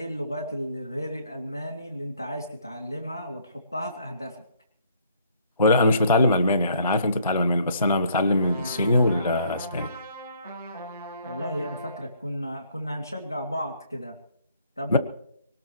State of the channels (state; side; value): inverted; both; correlation -0.63